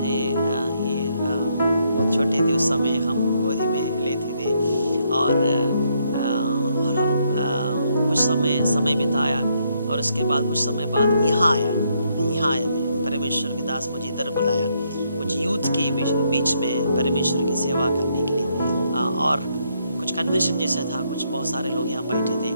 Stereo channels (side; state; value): both; inverted; correlation -0.74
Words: ये बहुत छोटे थे उस समय, हम गोदी में लेते थे और हम कुछ समय बिताया और उसके बाद कुछ समय बाद यहाँ आया मैं, परमेश्वर के दास मुझे इधर बुलाया कुछ यूथ के बीच में परमेश्वर की सेवा करने के लिए, और कुछ कन्वेंशन जैसा था, कुछ बहुत सारे लोग यहाँ बैठे थे